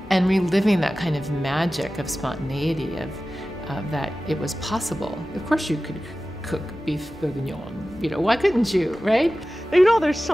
and reliving that kind of magic of spontaneity, of that it was possible. Of course you could cook beef bourguignon, why couldn't you, right? There's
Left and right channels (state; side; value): normal; both; correlation 0.95